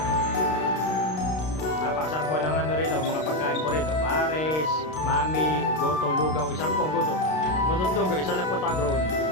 Napakasarap po ng ano rito, mga pagkain po rito. Pares, mami, goto, lugaw. Isang po goto. Goto at lugaw, isa lang po tagron.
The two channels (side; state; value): right; late; 32 ms